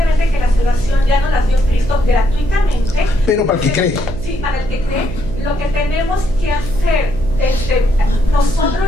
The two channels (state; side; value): noise; right; hum, 9 dB below the sound